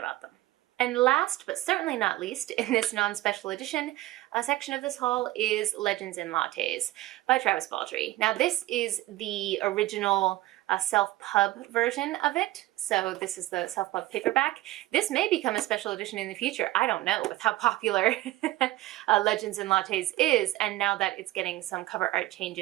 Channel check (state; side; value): quieter; left; 17.2 dB